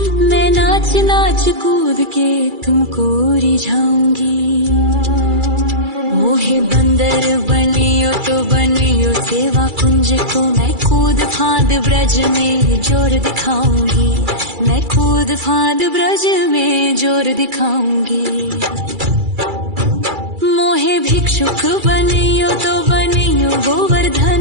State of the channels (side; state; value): left; late; 2.3 ms